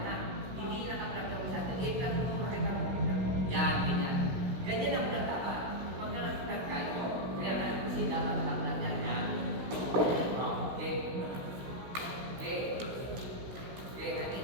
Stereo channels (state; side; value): late; left; 16 ms